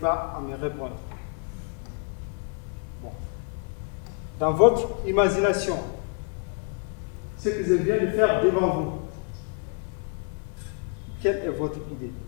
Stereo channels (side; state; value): right; quieter; 36.9 dB